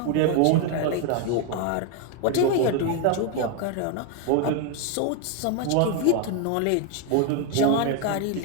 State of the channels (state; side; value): different; both; correlation 0.01